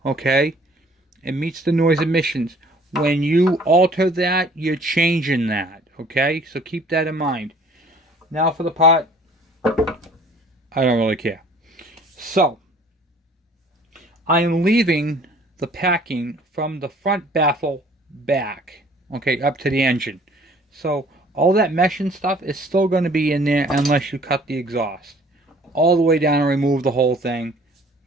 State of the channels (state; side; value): normal; both; correlation 0.54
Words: Okay? It meets the noise emissions. When you alter that, you're changing that. Okay? So keep that in mind. Now for the part, I don't really care. So, I am leaving the packing from the front baffle back. Okay, up to the engine. So, all that mesh and stuff is still going to be in there unless you cut the exhaust. All the way down and remove the whole thing.